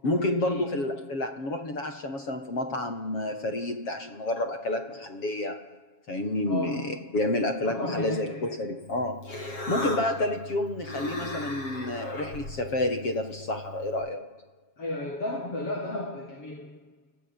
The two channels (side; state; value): right; late; 7.3 ms